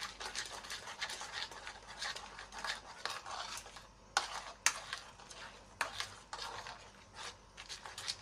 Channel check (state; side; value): identical; both; correlation 1.00